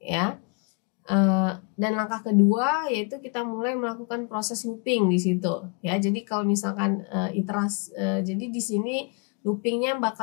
ya. Dan langkah kedua yaitu kita mulai melakukan proses looping di situ ya. Jadi kalau misalkan jadi di sini loopingnya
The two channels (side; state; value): right; quieter; 32.6 dB